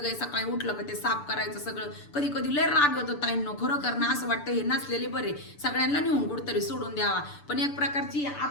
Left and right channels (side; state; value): right; late; 6.9 ms